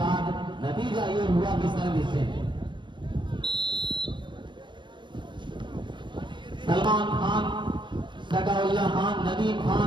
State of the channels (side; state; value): left; late; 0.23 ms